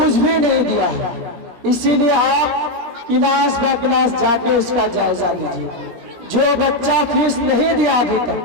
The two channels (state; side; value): late; left; 17 ms